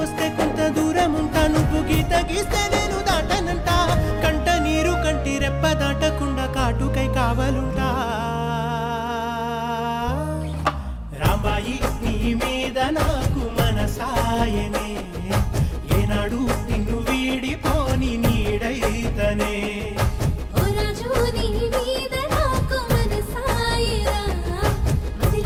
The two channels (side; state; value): both; identical; correlation 1.00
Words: వస్తే కొంత దూరం ఉంటా, నువ్వు గీత గీస్తే నేను దాటనంట. కంట నీరు కంటి రెప్ప దాటకుండా కాటుకై కావలుంటా. రాంబాయి నీ మీద నాకు మనసాయనే, ఏనాడు నిన్ను వీడిపో